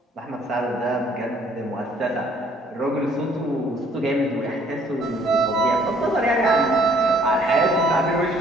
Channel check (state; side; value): normal; both; correlation 0.61